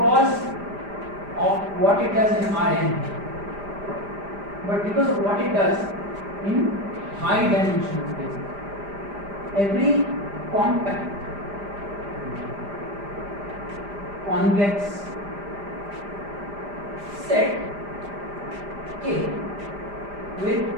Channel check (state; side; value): late; left; 5.0 ms